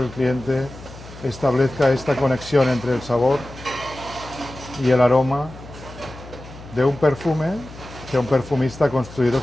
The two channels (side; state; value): left; noise; hum, 17 dB below the sound